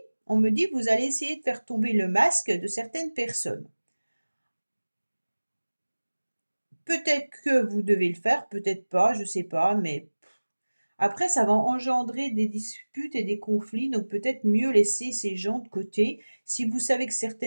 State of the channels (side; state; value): both; inverted; correlation -1.00